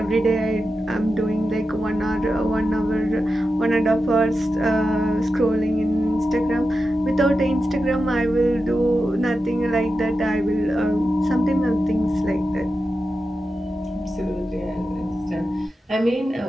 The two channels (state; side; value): normal; both; correlation 0.91